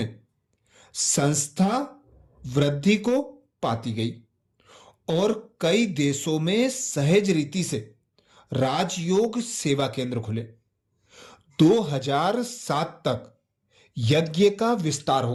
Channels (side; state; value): both; identical; correlation 1.00